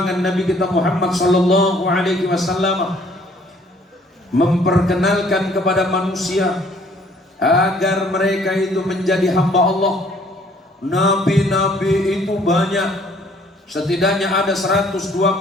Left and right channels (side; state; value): both; normal; correlation 0.60